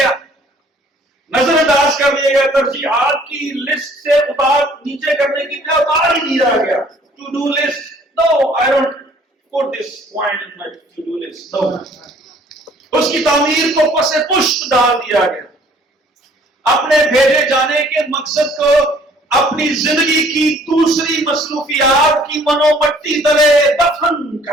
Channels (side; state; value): both; normal; correlation 0.57